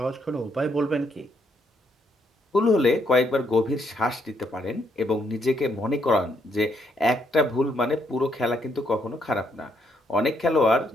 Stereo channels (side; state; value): both; normal; correlation 0.73